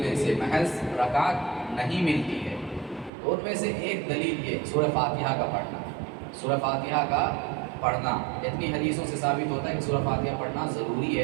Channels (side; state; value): left; drops out; at 3.1 s